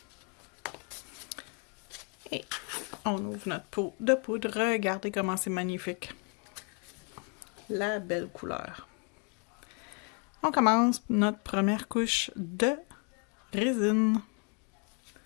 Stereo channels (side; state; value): right; quieter; 37.0 dB